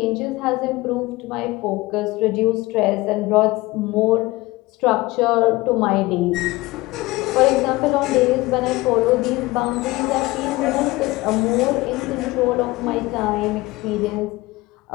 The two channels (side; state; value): right; quieter; 20.7 dB